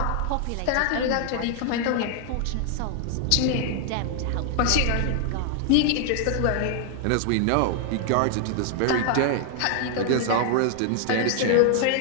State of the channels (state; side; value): different; both; correlation 0.00